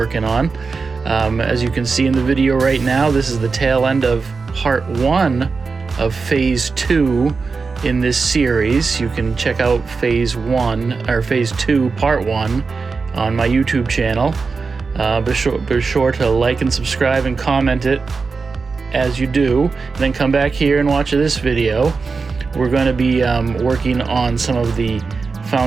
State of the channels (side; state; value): left; quieter; 4.6 dB